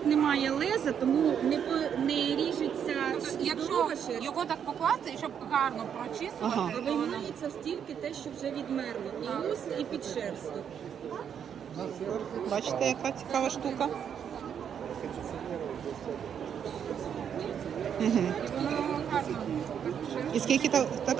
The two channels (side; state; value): left; quieter; 8.2 dB